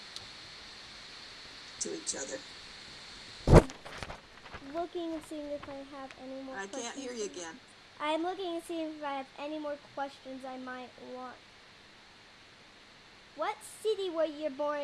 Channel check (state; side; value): identical; both; correlation 1.00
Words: to each other. Looking and seeing if I have any more I questions. can't hear you again. I'm looking and seeing if I have any more questions I might want what city were you